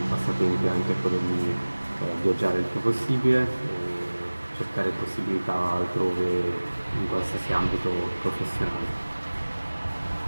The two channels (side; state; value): both; inverted; correlation -1.00